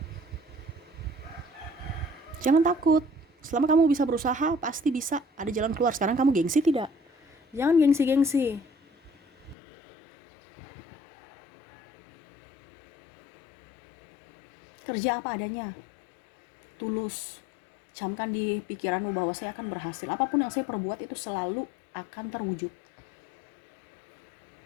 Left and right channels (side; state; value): right; drops out; at 9.6 s